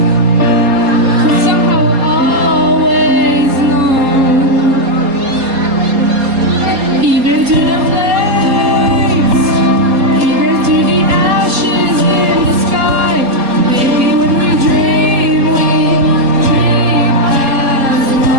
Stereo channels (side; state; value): left; late; 4.3 ms